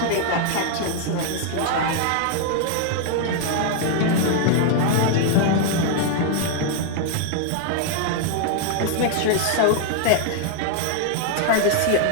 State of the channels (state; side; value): different; both; correlation 0.00